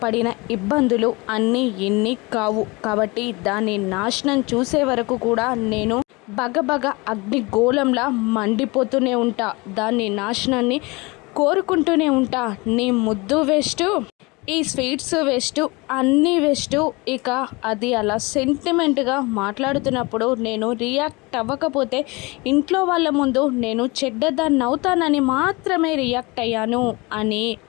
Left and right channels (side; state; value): right; quieter; 25.3 dB